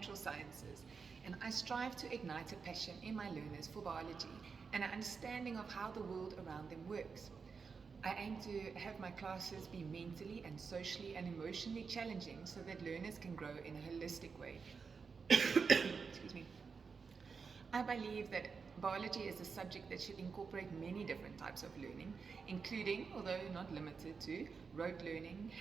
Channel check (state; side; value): quieter; left; 5.4 dB